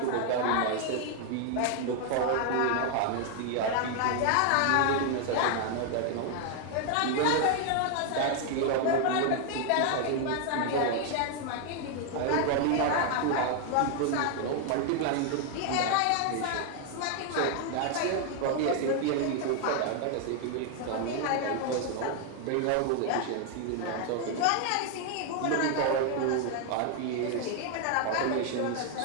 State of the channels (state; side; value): different; both; correlation 0.00